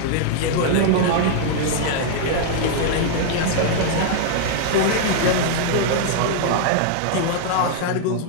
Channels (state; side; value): different; both; correlation -0.01